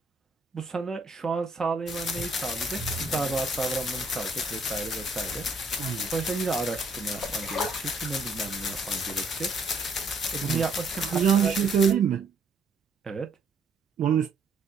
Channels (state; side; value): quieter; left; 3.1 dB